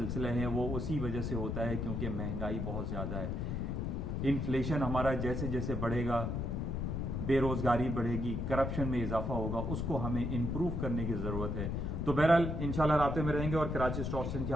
ہیں وہ اسی وجہ سے ہوتا ہے کیونکہ مہنگائی بہت زیادہ ہے. انفلیشن ہمارا جیسے جیسے بڑھے گا, بے روزگاری بڑھے گی, کرپشن میں اضافہ ہوگا, اس کو ہمیں امپروو کرنے کی ضرورت ہے. تو بہرحال انشاءاللہ رابطے میں رہیں گے اور کراچی اسٹاک ایکسچینج کے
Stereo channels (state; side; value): noise; left; rumble, 2 dB below the sound